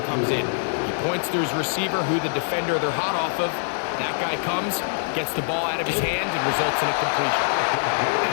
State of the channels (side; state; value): right; silent; 61 dB below the other